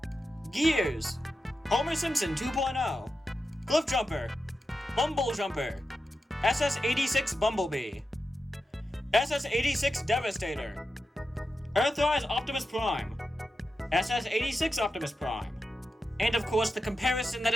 Gears! Homer Simpson 2.0! Cliff Jumper! Bumble Jumper! SS-86 Bumblebee! SS-86 Devastator! Earthrise Optimus Prime! SS-86 Optimus Prime! And of course the comparison that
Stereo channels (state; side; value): normal; both; correlation 0.90